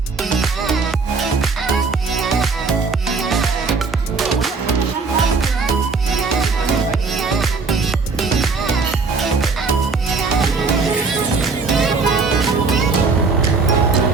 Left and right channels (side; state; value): left; quieter; 4.4 dB